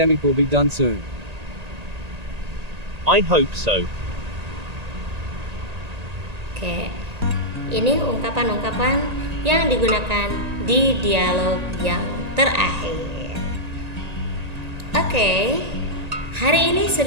will be done soon. I hope so. Oke, ini ungkapan-ungkapan yang digunakan di dialog yang terakhir. Oke, hari ini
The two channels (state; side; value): late; left; 1.8 ms